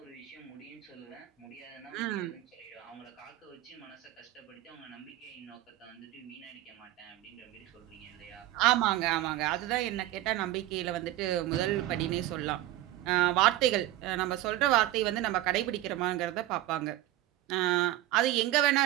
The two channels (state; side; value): quieter; left; 15.1 dB